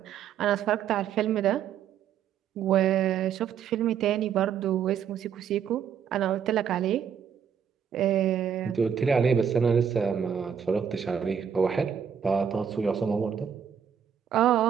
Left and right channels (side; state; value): left; quieter; 8.0 dB